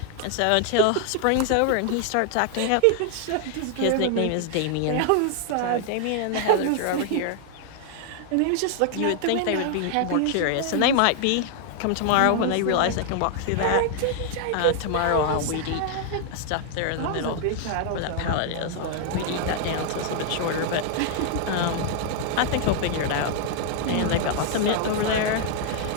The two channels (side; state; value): both; different; correlation 0.00